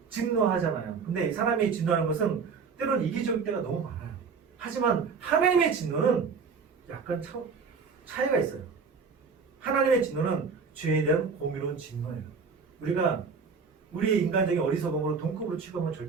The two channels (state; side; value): quieter; left; 5.4 dB